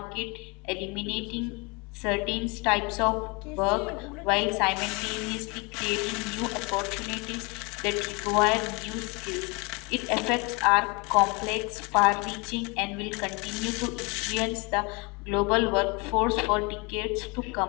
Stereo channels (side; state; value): right; quieter; 29.3 dB